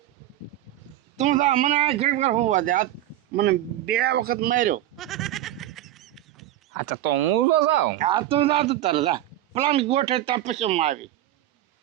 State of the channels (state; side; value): quieter; left; 13.7 dB